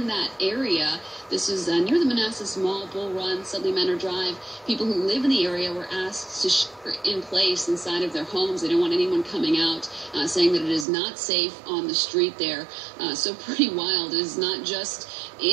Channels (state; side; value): drops out; left; at 10.9 s